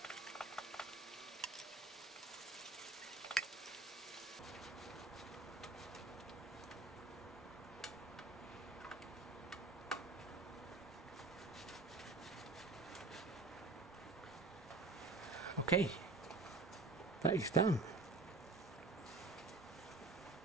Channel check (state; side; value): quieter; left; 3.5 dB